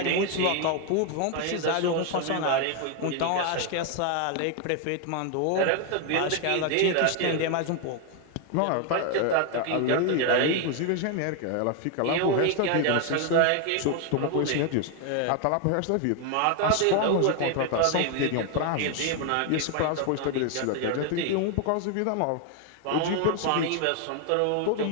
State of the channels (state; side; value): different; both; correlation 0.01